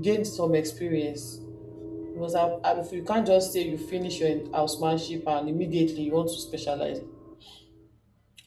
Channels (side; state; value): both; identical; correlation 1.00